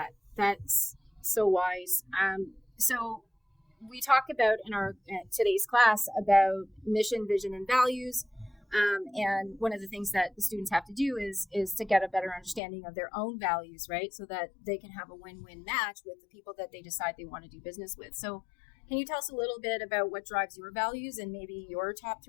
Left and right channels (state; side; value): drops out; right; at 12.6 s